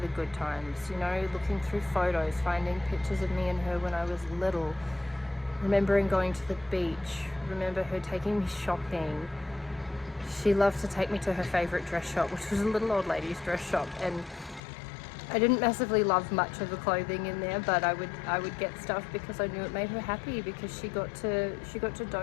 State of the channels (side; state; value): right; drops out; at 14.6 s